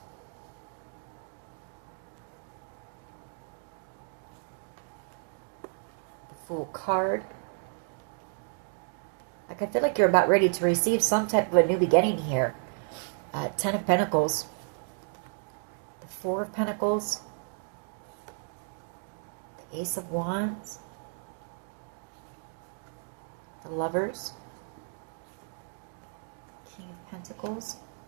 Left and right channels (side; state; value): left; silent; 56 dB below the other